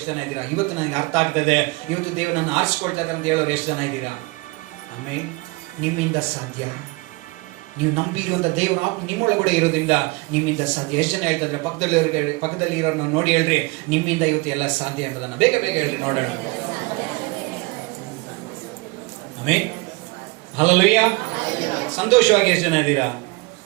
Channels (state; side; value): quieter; left; 24.7 dB